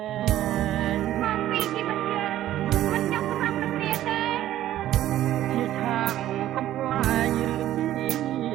ែងមកពីជីវិតយើងមិនចង់សម្រាប់គ្នាទេជាឆាកកំប្លែងឬជ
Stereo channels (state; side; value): quieter; left; 13.2 dB